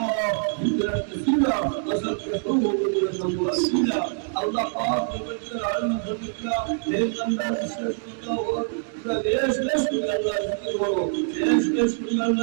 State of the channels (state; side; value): silent; left; 62 dB below the other